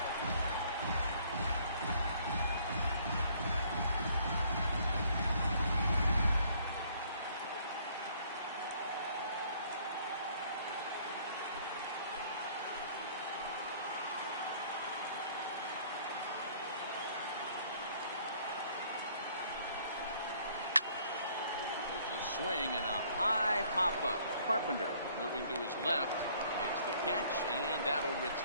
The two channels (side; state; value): both; inverted; correlation -0.60